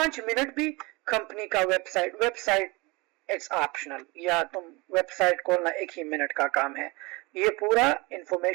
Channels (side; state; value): left; quieter; 25.3 dB